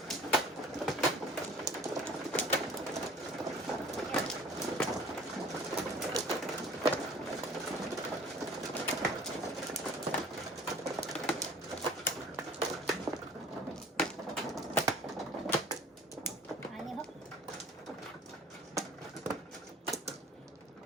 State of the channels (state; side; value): normal; both; correlation 0.48